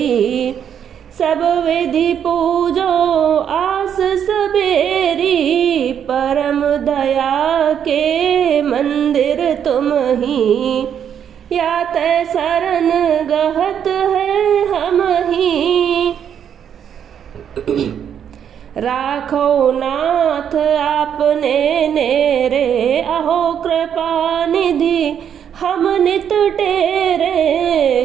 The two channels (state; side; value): quieter; left; 8.6 dB